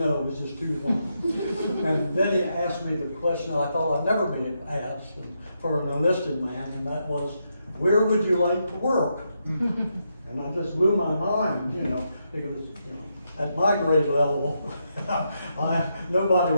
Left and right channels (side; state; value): both; inverted; correlation -0.82